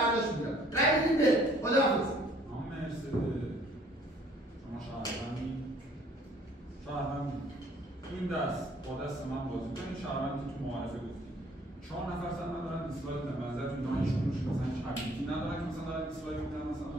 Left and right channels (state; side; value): normal; both; correlation 0.59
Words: می‌کنم. رأی بدید به خداحافظ. شهروند تو این دست با دست من بازی کنید. شهروندی تو معارفه گفتیم 4 نفر سن ندارن دیسلایک بدن. نظرتون دانشجوش مثلا چابیتی ندارن که مثلا دارن دیسلایک میدن. مثلا